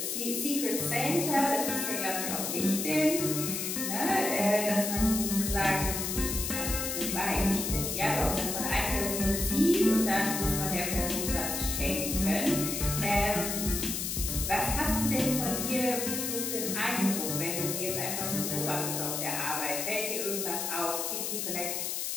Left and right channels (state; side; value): noise; left; hiss, 2 dB below the sound